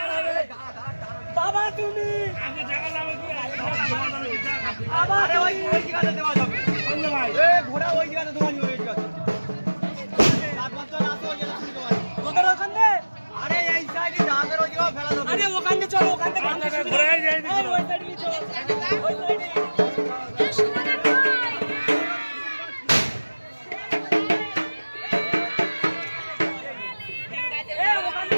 বাবা তুমি আরে ওই জায়গাতে দেওয়া যাবে ভাই এ ঘোড়া ওই জায়গাতে দেওয়া যাবে ওই জায়গাতে রাতবার তো রাতে ওই জায়গাতে শুনতে পারি তোদের ওখানে আরে এই সাইডে ডাঙের ওই জায়গা ফেলা যাবে আরে ওখানে চলো ওখানে ঘোড়ায় যাই দিই ওই সাইডে চলো ওই সাইডে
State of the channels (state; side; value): inverted; both; correlation -1.00